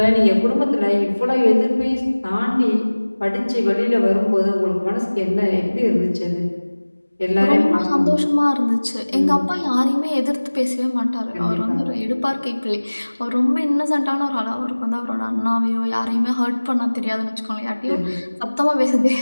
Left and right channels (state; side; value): inverted; both; correlation -1.00